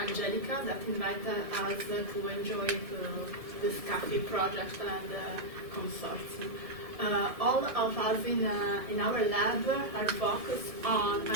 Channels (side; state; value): left; late; 1.7 ms